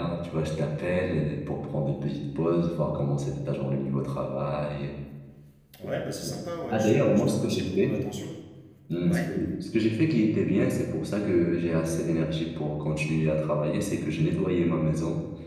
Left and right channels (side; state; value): both; identical; correlation 1.00